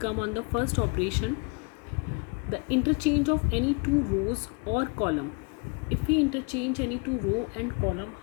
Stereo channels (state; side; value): quieter; right; 32.8 dB